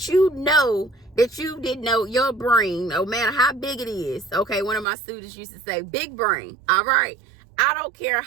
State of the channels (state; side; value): drops out; left; at 4.9 s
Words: you know that you didn't know. Your brain, no matter how big it is. Okay, one of my students used to say, big brain. All right. I don't care